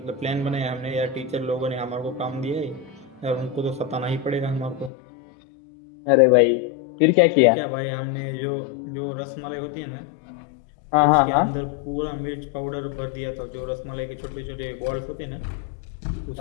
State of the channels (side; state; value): right; drops out; at 4.9 s